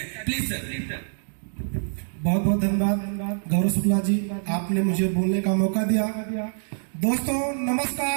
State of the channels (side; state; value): left; silent; digital silence